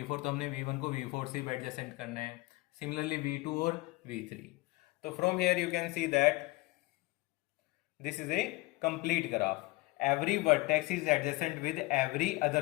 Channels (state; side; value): quieter; right; 21.4 dB